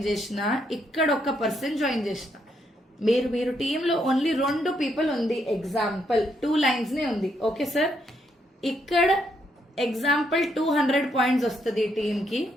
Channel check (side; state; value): both; normal; correlation 0.75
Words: చేసిన, ఇక్కడ ఒక్క పర్సన్ జాయిన్ చేసిన, మీరు టీంలో ఓన్లీ 2 పీపుల్ ఉంది, ఎగ్జాంపుల్ 2 లైన్స్ నే ఉంది, ఓకే సార్. ఇక్కడ ఎగ్జాంపుల్ 200 పాయింట్స్ వస్తుంది టీమ్ కి,